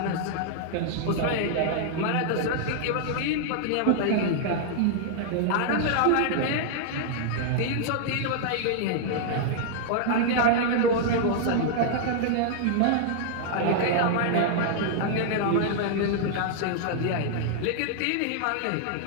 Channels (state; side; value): different; both; correlation -0.01